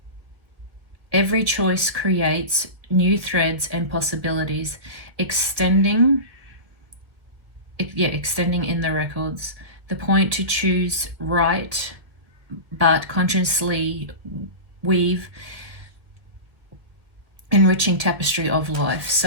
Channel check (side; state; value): left; late; 1.6 ms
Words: Every choice creates new threads and possibilities, extending in the records. The point to choose right, but consciously weave enriching tapestry of life.